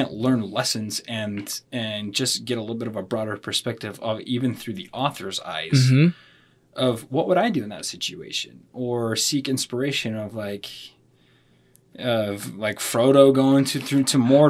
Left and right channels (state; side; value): identical; both; correlation 1.00